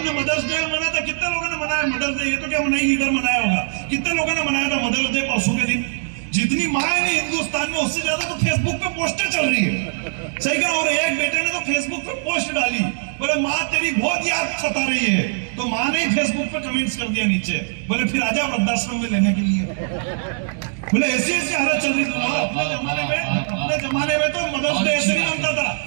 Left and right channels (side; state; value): left; silent; digital silence